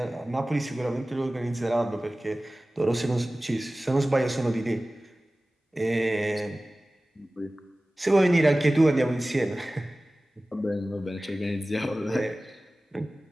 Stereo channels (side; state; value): both; normal; correlation 0.97